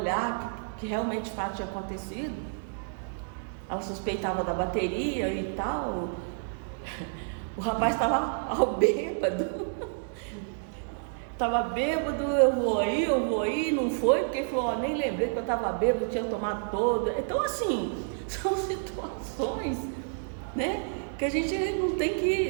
que realmente o fato tinha acontecido, ela suspeitava da bateria e tal. O rapaz estava ao bêbado. Estava bêbado, eu vou aí, não foi, porque ele falou, nem lembrei que eu estava bêbado, tinha tomado todo. Então, assim, são situações, né, que a gente não tem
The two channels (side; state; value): left; silent; digital silence